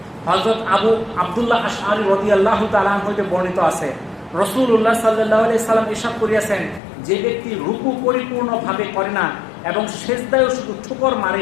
হযরত আবু আব্দুল্লাহ আশআরী রাদিয়াল্লাহু তাআলা আনহু হতে বর্ণিত আছে, রাসূলুল্লাহ সাল্লাল্লাহু আলাইহি সাল্লাম ইরশাদ করিয়াছেন, যে ব্যক্তি রুকু পরিপূর্ণভাবে করে না এবং সিজদায়ও শুধু ঠুকর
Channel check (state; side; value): drops out; right; at 6.8 s